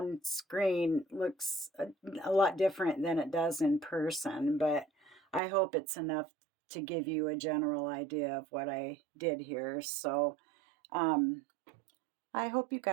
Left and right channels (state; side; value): drops out; left; at 5.4 s